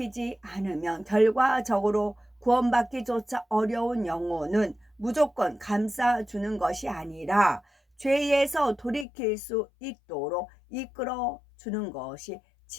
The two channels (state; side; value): drops out; right; at 9.1 s